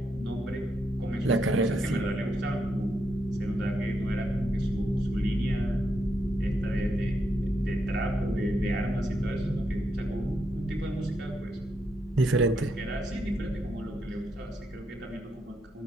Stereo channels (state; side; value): normal; both; correlation 0.80